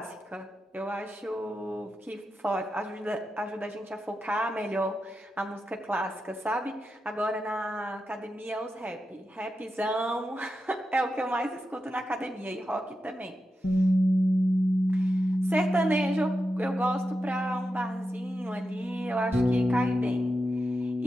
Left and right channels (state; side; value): normal; both; correlation 0.89